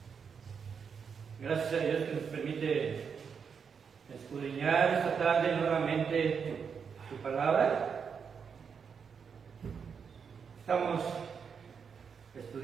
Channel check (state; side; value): quieter; left; 6.4 dB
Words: Gracias a Dios que nos permite escudriñar esta tarde nuevamente su palabra. Estamos